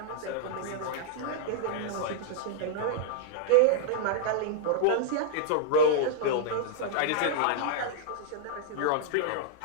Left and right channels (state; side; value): different; both; correlation -0.01